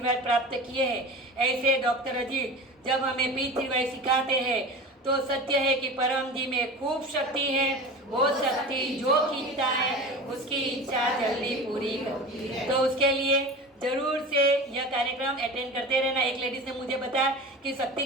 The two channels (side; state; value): both; normal; correlation 0.33